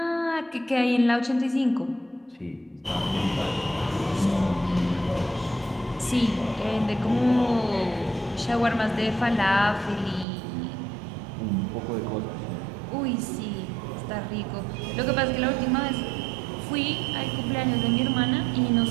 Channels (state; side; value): drops out; left; at 10.2 s